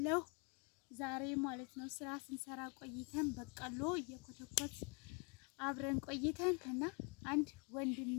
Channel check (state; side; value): quieter; right; 34.2 dB